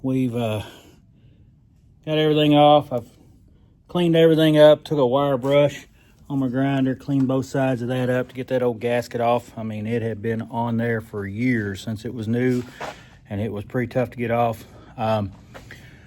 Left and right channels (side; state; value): both; identical; correlation 1.00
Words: We've got everything off. I've cleaned everything up, took a wire brush on my grinder, cleaned both sides of that up to get that old gasket off. I mean, it had been on there for years since it was new, and it was pretty tough to get off.